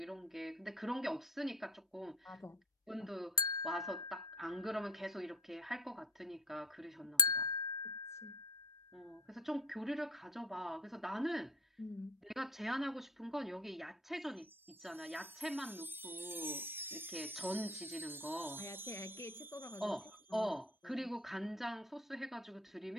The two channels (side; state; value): both; normal; correlation 0.33